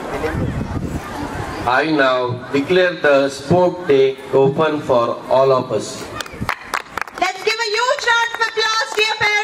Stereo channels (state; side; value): identical; both; correlation 1.00